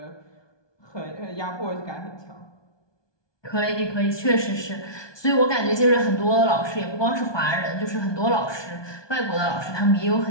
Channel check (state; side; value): late; right; 1.2 ms